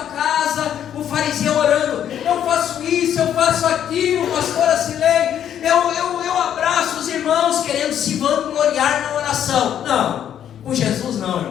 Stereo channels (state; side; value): quieter; right; 9.9 dB